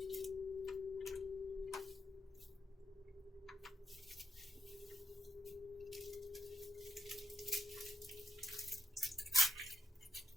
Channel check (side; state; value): both; normal; correlation 0.80